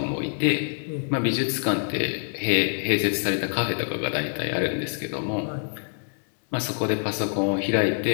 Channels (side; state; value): right; silent; digital silence